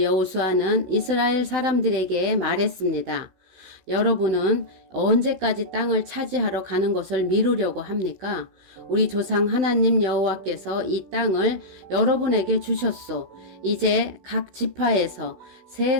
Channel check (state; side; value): late; left; 16 ms